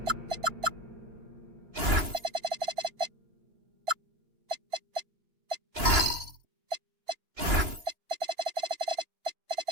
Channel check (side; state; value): left; late; 2.9 ms